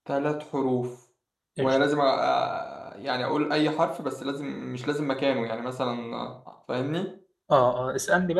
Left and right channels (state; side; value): identical; both; correlation 1.00